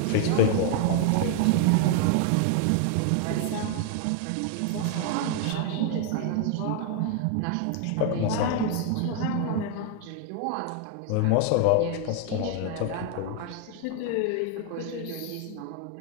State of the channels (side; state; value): both; different; correlation 0.01